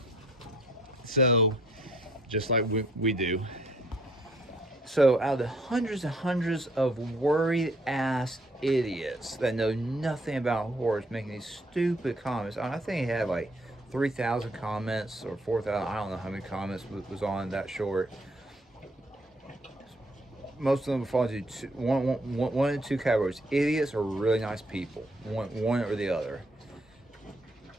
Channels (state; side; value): normal; both; correlation 0.65